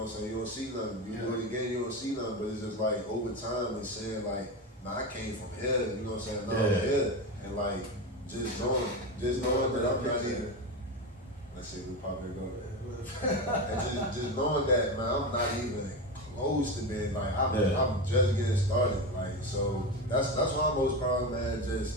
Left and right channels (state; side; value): normal; both; correlation 0.19